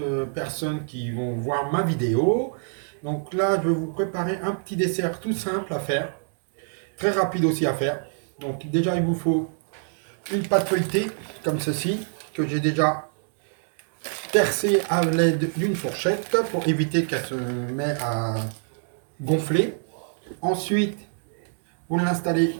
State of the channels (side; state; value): left; silent; digital silence